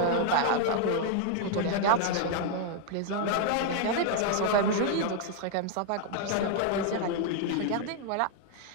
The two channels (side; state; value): both; different; correlation 0.00